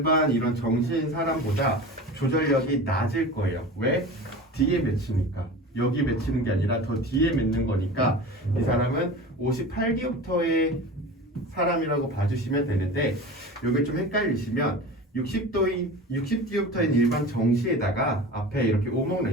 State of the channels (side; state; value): both; normal; correlation 0.34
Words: 이런 정시인 사람보다 조절력이 낮을 거예요. 왜? 뒤에 맺히니까. 여기 맺히는 게 아니라 더 뒤에 맺는 거니까 이 사람은 58디옵터의 사람이라고 봐주시면 되는데, 여기 좀 헷갈리시면 60디옵터인 일반 정시에다가 앞에 이렇게 오목